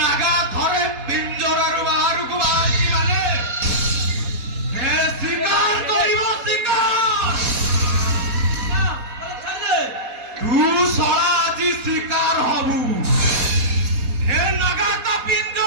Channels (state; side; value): late; left; 4.2 ms